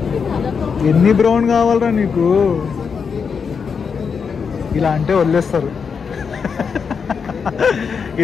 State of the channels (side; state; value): right; quieter; 6.0 dB